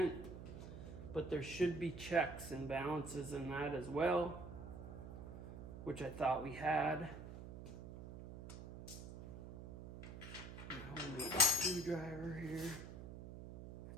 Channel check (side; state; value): right; noise; hum, 11 dB below the sound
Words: But there should be checks and balances in that as well, which I thought we had. Homemade screwdriver here.